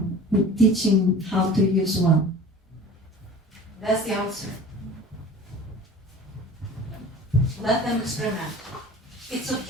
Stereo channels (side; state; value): both; normal; correlation 0.41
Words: we're teaching how to use one. That's the answer. Let them experiment. It's